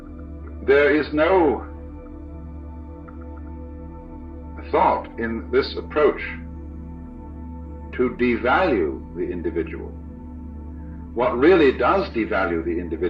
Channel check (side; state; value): both; identical; correlation 1.00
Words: there is no thought in this approach to devalue the individual. What really does devalue the